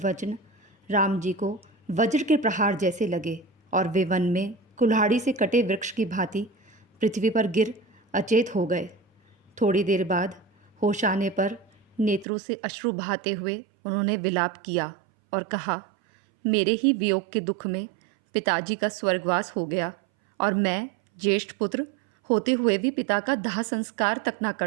वचन राम जी को वज्र के प्रहार जैसे लगे और वे वन में कुल्हाड़ी से कटे वृक्ष की भांति पृथ्वी पर गिर अचेत हो गए। थोड़ी देर बाद होश आने पर नेत्रों से अश्रु बहाते हुए उन्होंने विलाप किया और कहा, मेरे ही वियोग के दुख में पिताजी का स्वर्गवास हो गया और मैं ज्येष्ठ पुत्र होते हुए भी पिता का दाह संस्कार तक ना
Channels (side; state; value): left; drops out; at 12.2 s